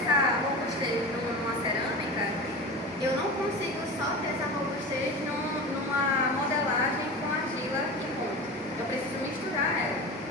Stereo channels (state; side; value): normal; both; correlation 0.29